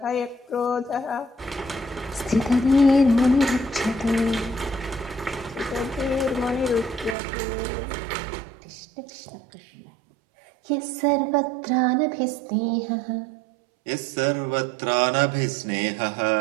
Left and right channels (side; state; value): left; drops out; at 7.2 s